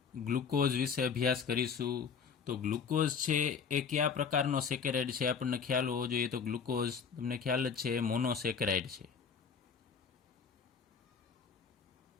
ગ્લુકોઝ વિશે અભ્યાસ કરીશું. તો ગ્લુકોઝ છે એ કયા પ્રકારનો સેકેરાઇડ છે આપણને ખ્યાલ હોવો જોઈએ. તો ગ્લુકોઝ તમને ખ્યાલ જ છે મોનોસેકેરાઇડ છે.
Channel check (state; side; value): quieter; right; 6.3 dB